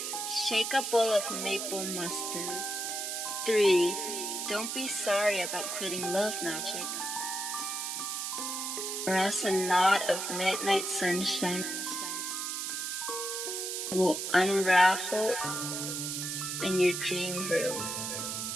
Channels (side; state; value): right; noise; hiss, 3 dB below the sound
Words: Shake a bowl of maple mustard. 3. Don't be sorry about quitting love magic, or else a knot of midnight sunshine will unravel in your dream room.